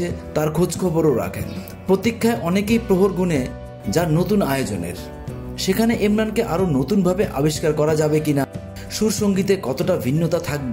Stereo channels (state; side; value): identical; both; correlation 1.00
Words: তার খোঁজখবরও রাখেন। প্রতীক্ষায় অনেকেই প্রহর গুনে যার নতুন আয়োজনের। সেখানে ইমরানকে আরো নতুনভাবে আবিষ্কার করা যাবে কিনা, সুর সঙ্গীতে কতটা ভিন্নতা